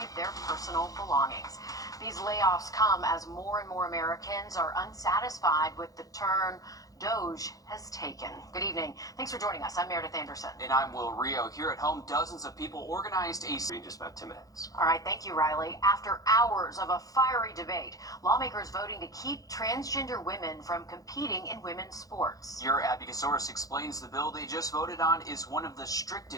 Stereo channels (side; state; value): right; late; 0.17 ms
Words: their personal belongings. These layoffs come as more and more Americans are unsatisfied with the turn DOGE has taken. Good evening. Thanks for joining us. I'm Meredith Anderson. And I'm Will Rio. Here at home, dozens of people organized a... In just about 10 minutes. All right, thank you, Riley. After hours of a fiery debate, lawmakers voting to keep transgender women from competing in women's sports. Your Abby Gasoris explains the bill they just voted on is one of the